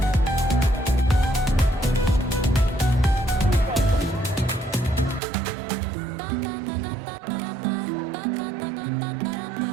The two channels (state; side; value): drops out; left; at 5.2 s